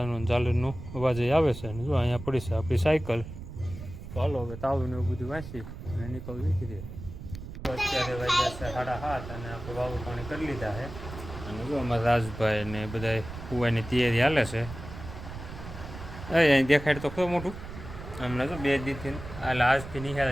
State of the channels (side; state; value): right; noise; rumble, 11 dB below the sound